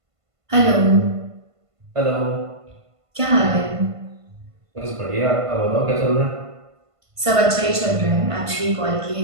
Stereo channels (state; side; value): late; left; 1.5 ms